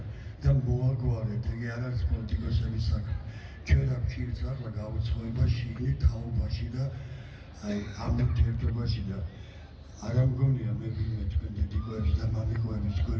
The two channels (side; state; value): both; identical; correlation 1.00